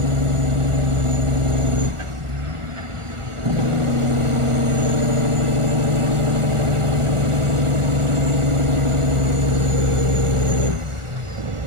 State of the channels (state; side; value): late; left; 1.4 ms